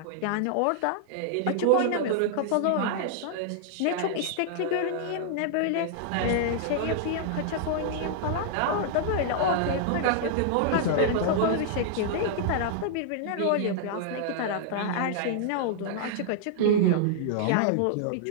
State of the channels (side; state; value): both; different; correlation -0.01